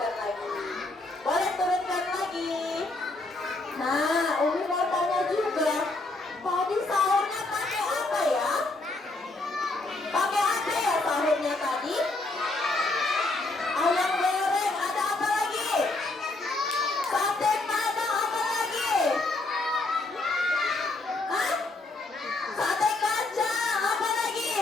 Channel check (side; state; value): right; quieter; 3.1 dB